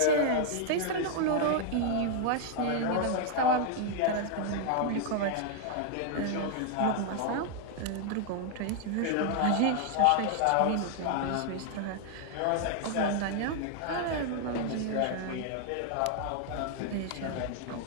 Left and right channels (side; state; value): both; different; correlation 0.00